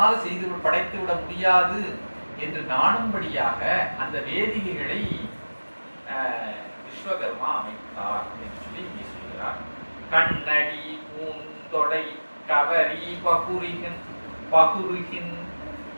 செய்து படைத்து விட முடியாது என்று நாணும்படியாக அந்த வேதிகைகளை விஸ்வகர்மா அமைத்தார் என்று சொல்லி இங்கே சொல்கிறார். கண்ணடி பூந்தொடை கவரி பகுருகின்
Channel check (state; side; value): inverted; both; correlation -1.00